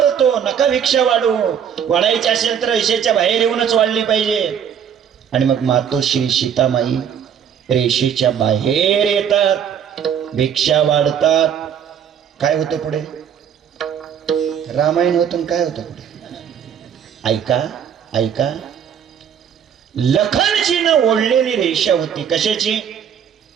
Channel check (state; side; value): quieter; left; 8.4 dB